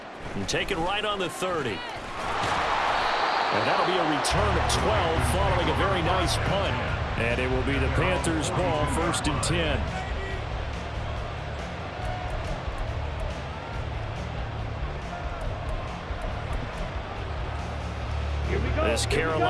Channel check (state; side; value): identical; both; correlation 1.00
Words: And take it right on the 30. And that'll be a return of 12 following a very nice punt. And it will be the Panthers' ball, 1st and 10. Here we go. This